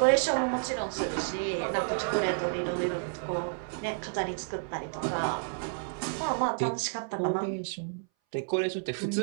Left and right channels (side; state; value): left; silent; 57 dB below the other